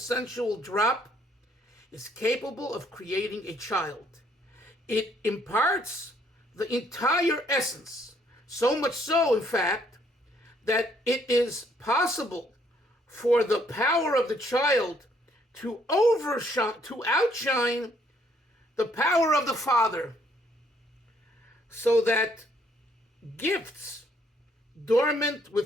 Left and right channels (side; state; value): both; normal; correlation 0.67